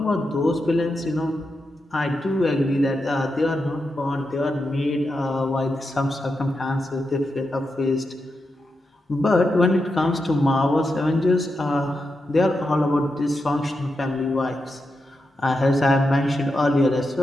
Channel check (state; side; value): normal; both; correlation 0.87